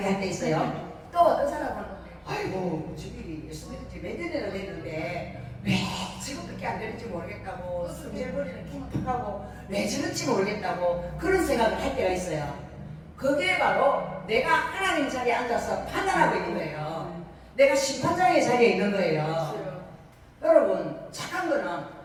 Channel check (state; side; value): identical; both; correlation 1.00